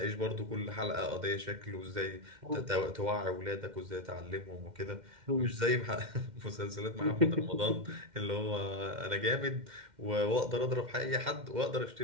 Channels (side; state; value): left; late; 2.1 ms